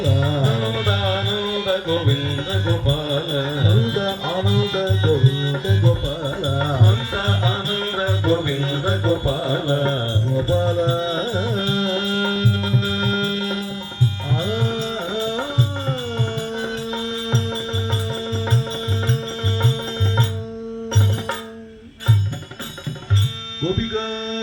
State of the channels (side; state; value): both; identical; correlation 1.00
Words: నందానంద గోవింద గోపాల నంద ఆనంద గోవింద గోపాల నంద ఆనంద గోవింద గోపాల గోపాల గోపికా